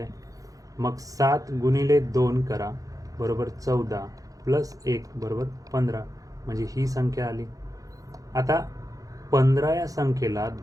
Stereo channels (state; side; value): late; left; 0.17 ms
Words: मग 7 गुणिले 2 करा बरोबर 14, प्लस 1 बरोबर 15, म्हणजे ही संख्या आली. आता 15 या संख्येला